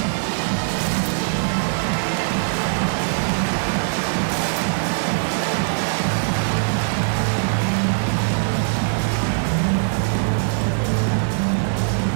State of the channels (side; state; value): left; silent; 65 dB below the other